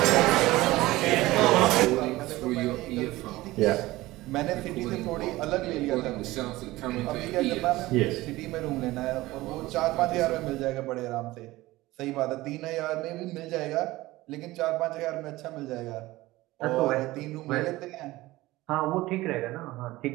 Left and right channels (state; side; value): quieter; left; 18.5 dB